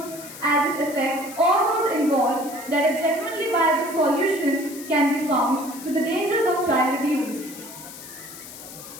as it affects all those involved that a genuinely viable solution can be found to the dangers of child abuse.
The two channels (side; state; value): left; noise; hiss, 14 dB below the sound